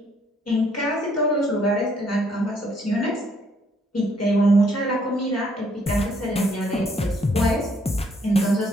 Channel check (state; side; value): normal; both; correlation 0.67